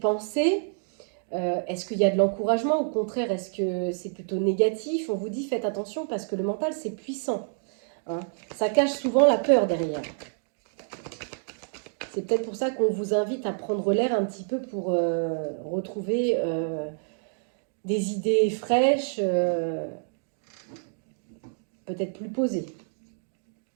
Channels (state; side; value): silent; left; digital silence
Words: est-ce qu'il y a de l'encouragement? Au contraire, est-ce que c'est plutôt négatif? On vous dit, faites attention parce que le mental, c'est puissant. Hein. Ça cache souvent la peur derrière. C'est peut-être pour ça qu'on vous invite à prendre l'air un petit peu pour retrouver des idées fraîches, peut-être plus posées.